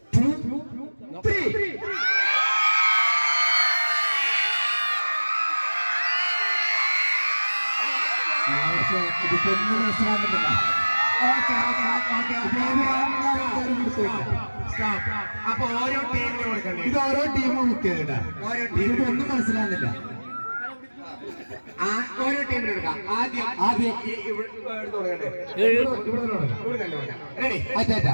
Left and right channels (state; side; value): inverted; both; correlation -1.00